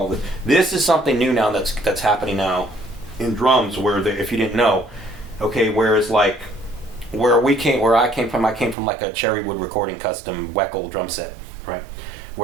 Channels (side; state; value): left; drops out; at 8.8 s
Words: it. This is something new now that's happening now in drums, where if you didn't know, okay, whereas like where I came from like a cherry wood recording custom Weckel drum set, right?